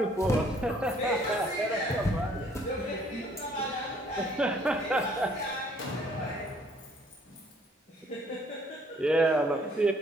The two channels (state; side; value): normal; both; correlation 0.61